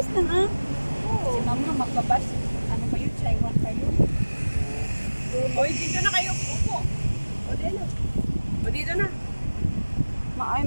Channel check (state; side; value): inverted; both; correlation -1.00